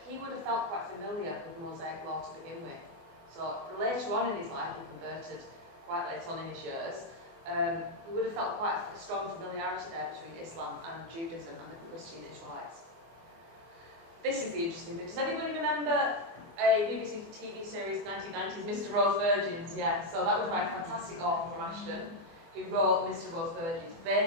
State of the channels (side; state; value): left; late; 24 ms